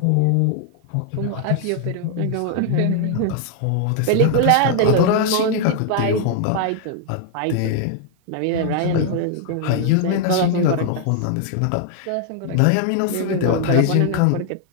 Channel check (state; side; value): different; both; correlation 0.00